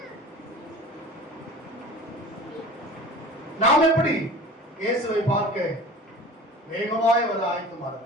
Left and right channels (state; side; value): normal; both; correlation 0.40